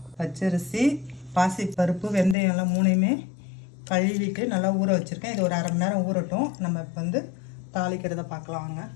பச்சரிசி, பாசி பருப்பு, வெந்தயம் எல்லாம் மூணையுமே கழுவிட்டு நல்லா ஊற வச்சுருக்கேன். இது ஒரு அரை மணி நேரம் ஊறட்டும். நம்ம இப்போ தாளிக்கிறத பார்க்கலாம் வாங்க.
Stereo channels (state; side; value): drops out; right; at 2.4 s